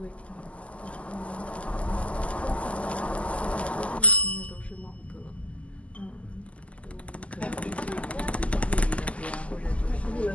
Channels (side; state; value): right; late; 0.063 ms